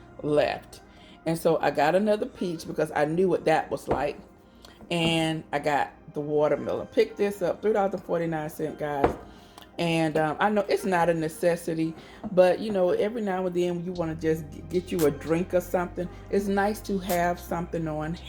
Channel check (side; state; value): both; identical; correlation 1.00